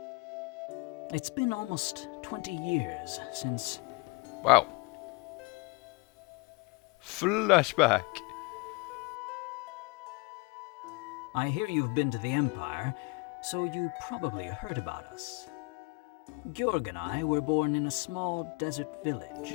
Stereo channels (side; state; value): right; quieter; 27.6 dB